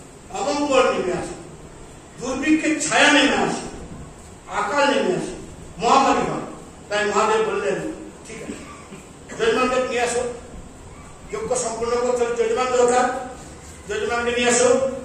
অমঙ্গল নেমে আসে, দুর্ভিক্ষের ছায়া নেমে আসে, আকাল নেমে আসে, মহামারী হয়। তাই মহাদেব বললেন ঠিক আছে যজমানকে নিয়ে আসো, যজ্ঞ সম্পূর্ণ করতে হলে যজমান দরকার, যজমানকে নিয়ে আসো।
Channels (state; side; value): identical; both; correlation 1.00